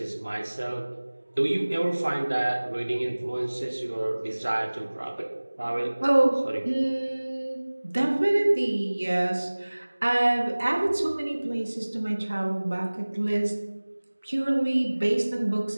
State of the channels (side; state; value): both; inverted; correlation -1.00